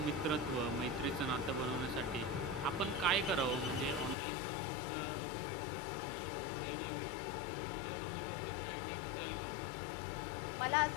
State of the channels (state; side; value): drops out; right; at 4.2 s